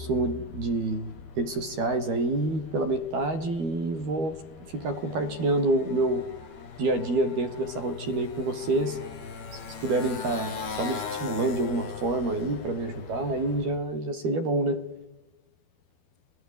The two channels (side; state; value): left; late; 12 ms